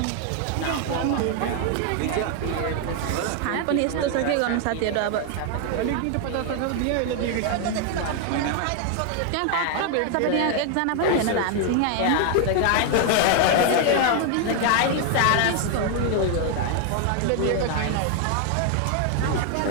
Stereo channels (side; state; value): both; different; correlation 0.00